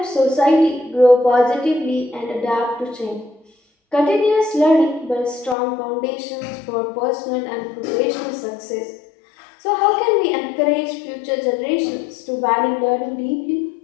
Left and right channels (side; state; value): right; drops out; at 5.6 s